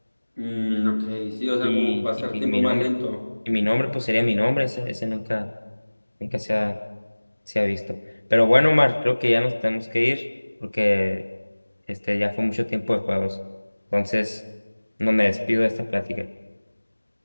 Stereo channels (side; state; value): both; inverted; correlation -1.00